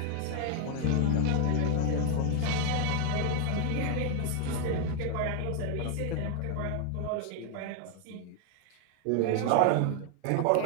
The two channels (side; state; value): both; different; correlation 0.00